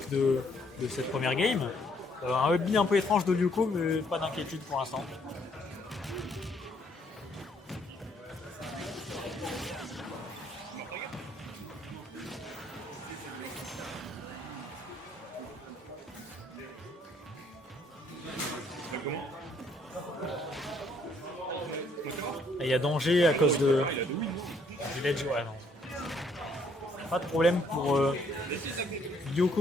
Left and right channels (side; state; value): both; normal; correlation 0.67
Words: de cette première game. Un hubby un peu étrange de Lyoko, mais pas d'inquiétude pour l'instant. Et il y a danger à cause de du ledge. Ouais, non. Pas de problème pour